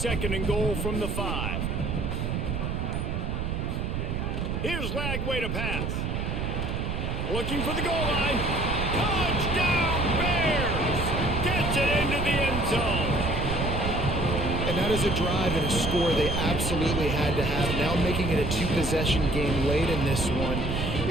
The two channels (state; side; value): noise; right; rumble, 2 dB below the sound